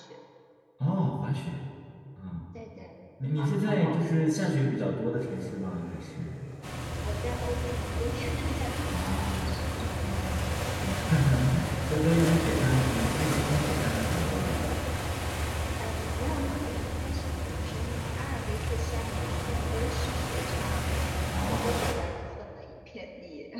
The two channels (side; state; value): both; identical; correlation 1.00